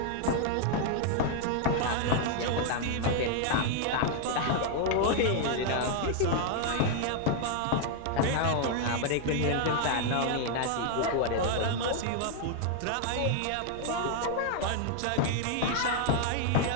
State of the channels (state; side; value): different; both; correlation 0.00